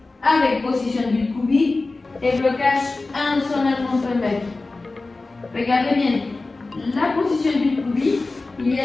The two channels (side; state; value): right; quieter; 3.4 dB